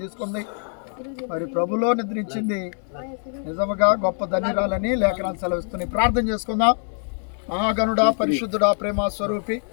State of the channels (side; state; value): right; silent; 56 dB below the other